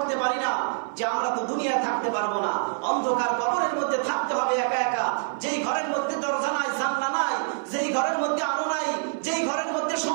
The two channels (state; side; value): silent; left; 58 dB below the other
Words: পারি না যে আমরা তো দুনিয়ায় থাকতে পারবো না, অন্ধকার কবরের মধ্যে থাকতে হবে একা একা। যেই ঘরের মধ্যে দরজা নাই, জানলা নাই, যেই ঘরের মধ্যে আলো নাই, যেই ঘরের মধ্যে